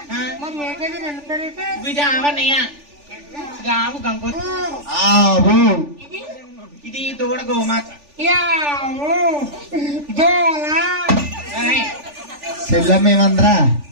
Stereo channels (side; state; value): left; late; 3.4 ms